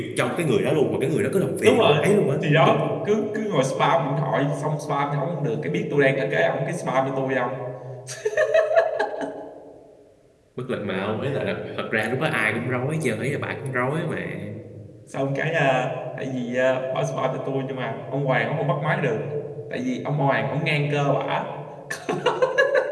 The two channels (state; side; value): identical; both; correlation 1.00